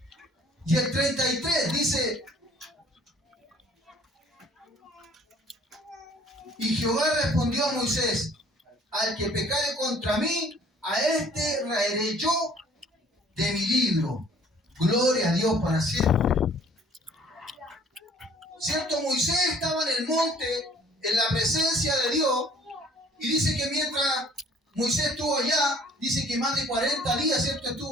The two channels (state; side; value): normal; both; correlation 0.57